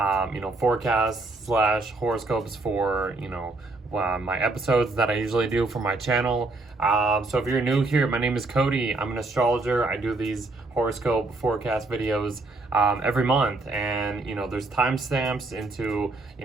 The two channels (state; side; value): quieter; left; 3.2 dB